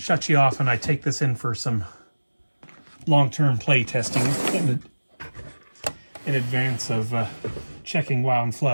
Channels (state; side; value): inverted; both; correlation -1.00